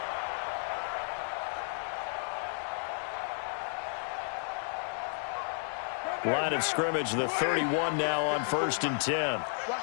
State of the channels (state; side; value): silent; right; digital silence